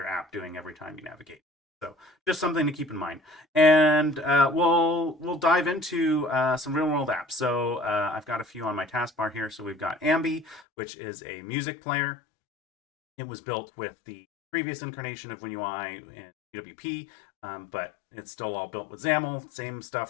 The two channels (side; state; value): right; drops out; at 10.6 s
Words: app doing every time you navigate. So just something to keep in mind. And we'll dive into some real world apps. So I've got a few on my taskbar here. So we've got Ambi, which is a music player. It was built with the previous incarnation of WinUI and UWP, but it's still all built with XAML. Same